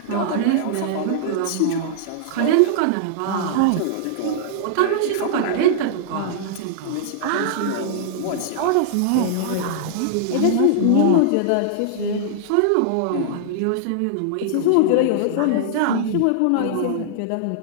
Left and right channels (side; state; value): both; different; correlation -0.01